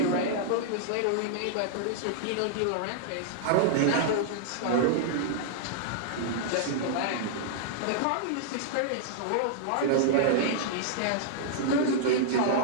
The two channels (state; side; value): different; both; correlation -0.01